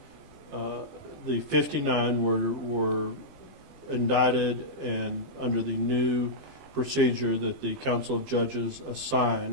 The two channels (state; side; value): late; left; 20 ms